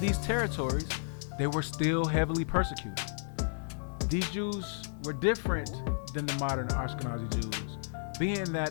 territories, they were still heavily persecuted. These Jews were different than the modern Ashkenazi Jews, being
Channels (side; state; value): right; silent; digital silence